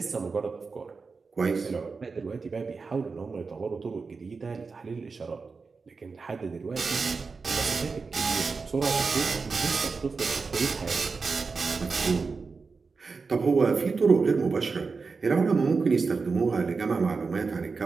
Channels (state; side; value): quieter; left; 4.6 dB